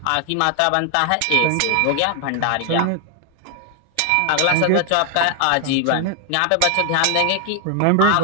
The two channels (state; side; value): different; both; correlation 0.00